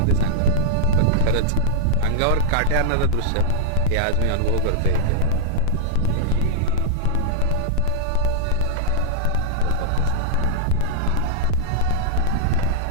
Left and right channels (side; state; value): both; different; correlation -0.01